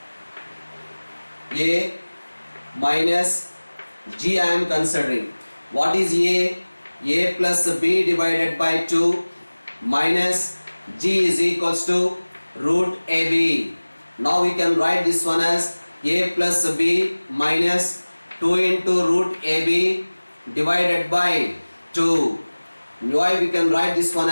A minus g I am considering. What is a? A plus b divided by 2 minus g is equals to root ab. Now we can write this one as a plus b minus 2 into root ab divided by 2. Why we can write this one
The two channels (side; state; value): both; inverted; correlation -1.00